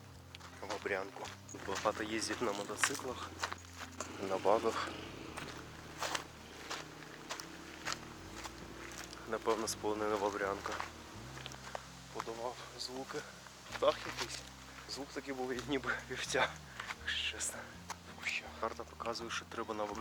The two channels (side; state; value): both; identical; correlation 1.00